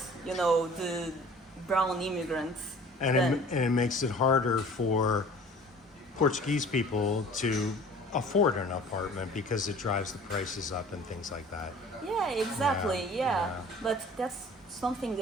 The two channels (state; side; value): normal; both; correlation 0.47